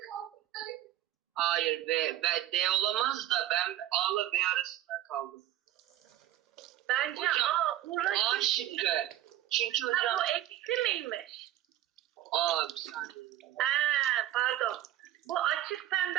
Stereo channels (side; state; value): left; quieter; 13.1 dB